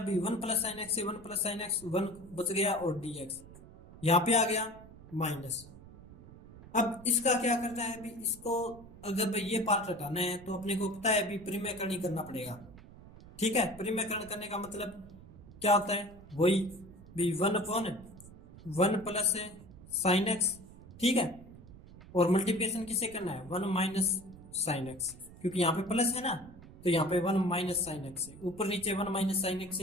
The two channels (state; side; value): noise; right; rumble, 19 dB below the sound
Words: 1 प्लस साइन एक्स से 1 प्लस साइन एक्स 1 बच गया, और dx यहाँ पे आ गया माइनस। अब इसका क्या करना है, अभी इसको अगर भाई ये पार्ट हटाना है तो अपने को पता है अभी परिमेयकरण ही करना पड़ेगा। ठीक है, परिमेयकरण करने का मतलब क्या होता है, वही भी 1/1 प्लस साइन एक्स। ठीक है, और मल्टीप्लिकेशन किससे करना है, 1 माइनस साइन एक्स, क्योंकि यहाँ पे प्लस है ना, तो यहाँ पे 1 माइनस साइन एक्स है, ऊपर नीचे 1 माइनस साइन एक्स